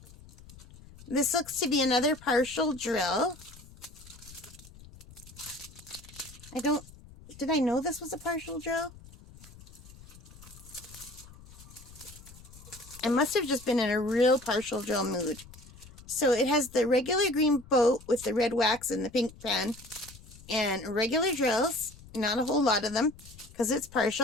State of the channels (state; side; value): noise; left; rumble, 20 dB below the sound